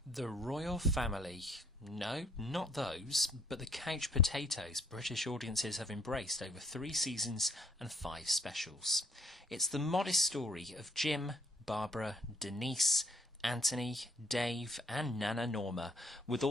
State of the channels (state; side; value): normal; both; correlation 0.62